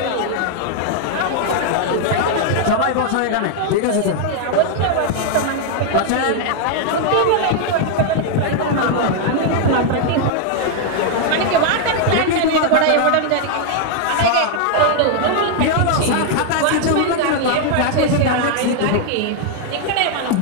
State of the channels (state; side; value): different; both; correlation 0.00